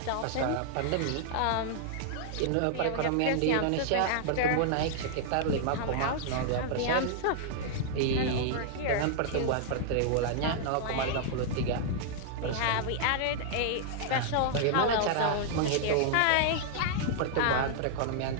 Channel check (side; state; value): both; different; correlation -0.01